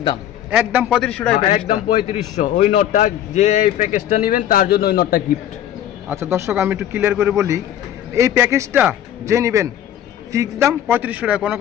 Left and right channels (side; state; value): right; quieter; 11.1 dB